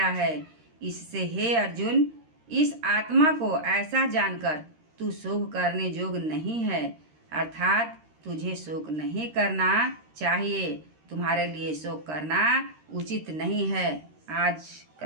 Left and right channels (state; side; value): late; left; 13 ms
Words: है। इससे हे अर्जुन, इस आत्मा को ऐसा जानकर तू शोक करने योग्य नहीं है, अर्थात तुझे शोक नहीं करना चाहिए। तुम्हारे लिए शोक करना उचित नहीं है। आज